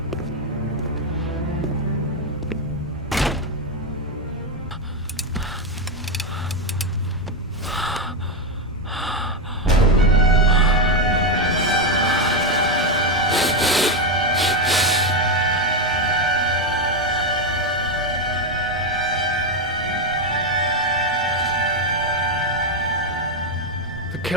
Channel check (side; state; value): both; normal; correlation 0.06